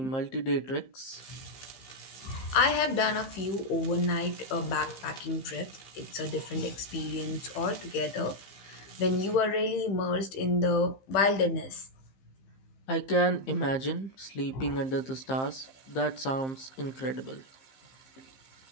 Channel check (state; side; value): late; right; 15 ms